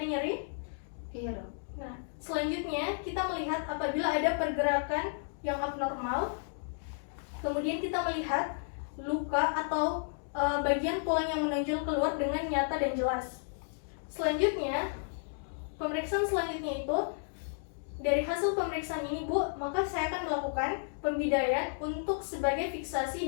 nyeri? Iya Dok. Nah, selanjutnya kita melihat apabila ada pergerakan yang abnormal. Kemudian kita melihat luka atau bagian tulang yang menonjol keluar dengan nyata dan jelas. Selanjutnya, pemeriksaan selanjutnya itu dari hasil pemeriksaan ini Bu, maka saya akan melakukan pembidaian untuk sebagai fiksasi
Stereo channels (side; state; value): right; silent; digital silence